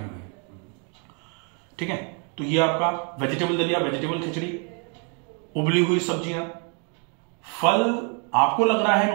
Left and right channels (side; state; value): left; quieter; 39.0 dB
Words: ठीक है, तो ये आपका वेजिटेबल दलिया, वेजिटेबल खिचड़ी, उबली हुई सब्जियां। फल आपको लग रहा है